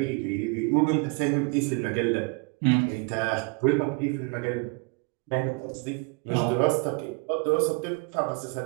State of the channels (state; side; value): quieter; left; 31.1 dB